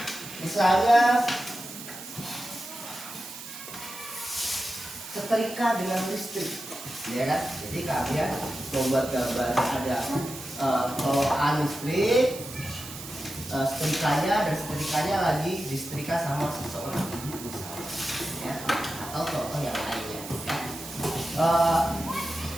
misalnya setrika dengan listrik, ya kan? Jadi kalian membuat gambar ada colokan listrik, setrikanya, dan setrikanya lagi disetrika sama seseorang, misalnya, ya, atau contoh yang lainnya, ya.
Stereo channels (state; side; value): noise; right; hiss, 12 dB below the sound